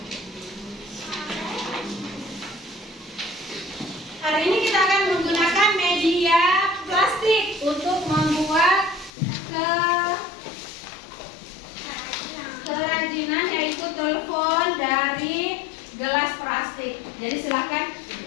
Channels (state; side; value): drops out; right; at 9.1 s